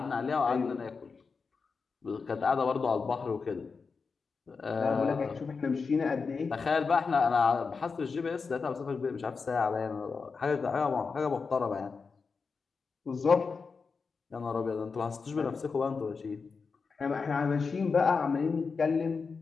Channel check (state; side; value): quieter; right; 4.9 dB